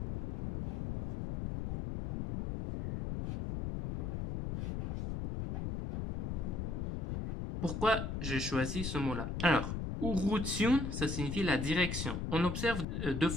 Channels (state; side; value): noise; left; rumble, 3 dB below the sound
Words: Pourquoi j'ai choisi ce mot-là? Alors, urutiun, ça signifie la direction. On observe deux